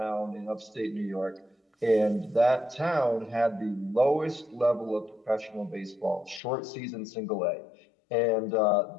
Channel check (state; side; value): drops out; right; at 6.4 s